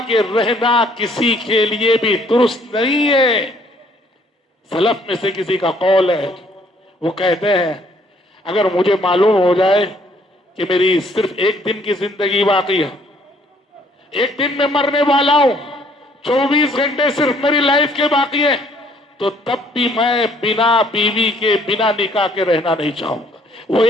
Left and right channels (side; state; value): both; normal; correlation 0.63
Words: کے رہنا کسی کے لیے بھی درست نہیں ہے۔ سلف میں سے کسی کا قول ہے، وہ کہتے ہیں اگر مجھے معلوم ہو جائے کہ میری صرف ایک دن کی زندگی باقی ہے، ایک دن میں مرنے والا ہوں، 24 گھنٹے صرف میری لائف کے باقی ہے، تو تب بھی میں بنا بیوی کے، بنا نکاح کے رہنا نہیں چاہوں گا، وہ